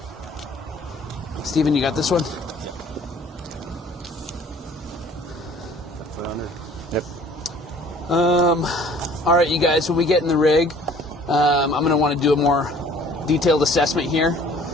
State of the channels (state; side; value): normal; both; correlation 0.53